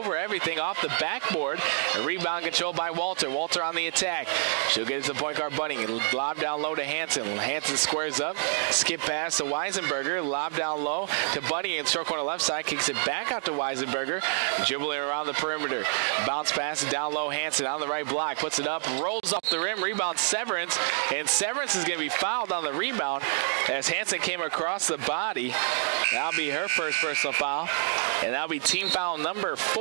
everything off the backboard. A rebound controlled by Walter. Walter on the attack. She'll get it to the point guard Bunning. Lob down low to Hanson. Hanson squares up. Skip pass to Weisenberger. Lob down low to Bunny in short corner left side. Kicks it back out to Weisenberger. Dribbling around the perimeter. Bounce pass down low. Hanson on the right block. Puts it up. Rolls off the rim. Rebound Severance. And Severance is going to be fouled on the rebound as Hanson came across the body. That'll be her first personal foul. And that'll be team foul number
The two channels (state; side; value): silent; left; digital silence